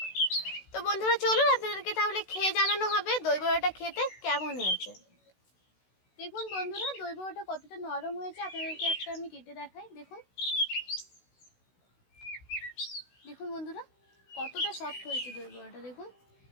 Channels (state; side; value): late; right; 16 ms